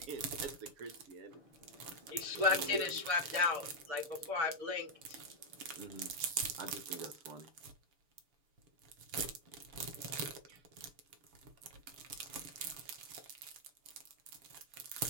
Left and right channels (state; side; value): late; left; 6.8 ms